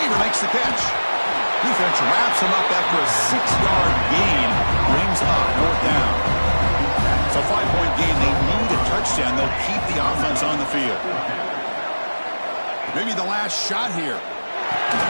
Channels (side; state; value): both; inverted; correlation -1.00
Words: makes the catch. Defense wraps him up after a 6-yard gain. Brings up fourth down. So 5-point game. They need a touchdown. They'll keep the offense on the field. Maybe the last shot here.